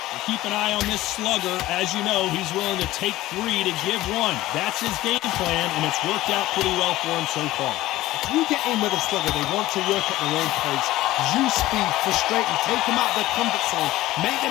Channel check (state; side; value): quieter; right; 16.6 dB